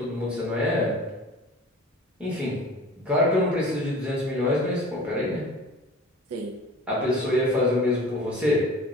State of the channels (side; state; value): both; normal; correlation 0.41